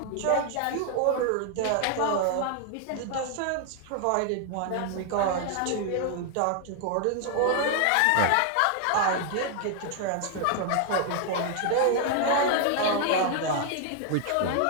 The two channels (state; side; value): different; both; correlation 0.00